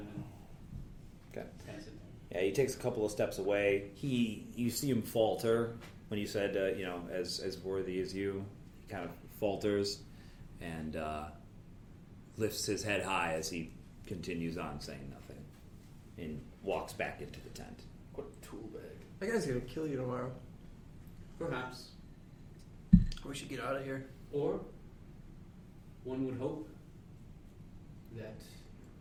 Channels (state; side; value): identical; both; correlation 1.00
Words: Okay. kind of sit there. Yeah, he takes a couple of steps away. You see him falter when you said, as worthy as you. He kind of falters and lifts his head high as he continues on saying nothing and walks back into the tent. What a tool bag. That guy's gonna kill you tomorrow. Perhaps. We should get out of here. Or one would hope that